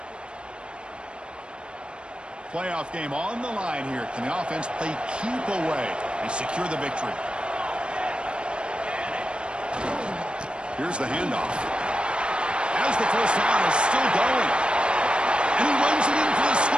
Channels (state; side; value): late; left; 0.055 ms